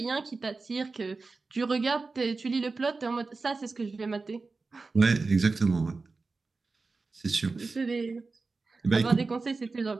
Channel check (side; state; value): left; quieter; 3.9 dB